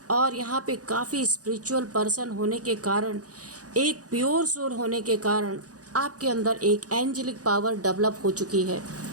और यहाँ पे काफ़ी स्पिरिचुअल पर्सन होने के कारण, एक प्योर सोल होने के कारण आपके अंदर एक एंजेलिक पावर डेवलप हो चुकी है,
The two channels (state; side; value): late; left; 0.67 ms